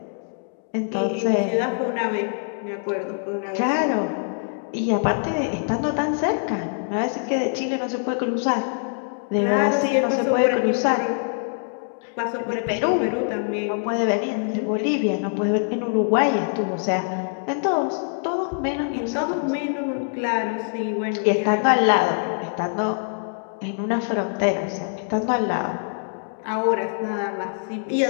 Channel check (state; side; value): silent; right; digital silence